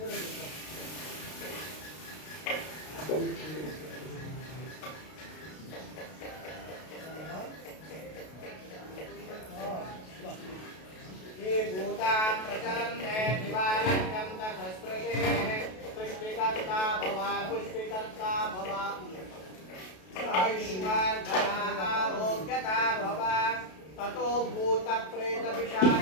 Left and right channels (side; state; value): right; late; 32 ms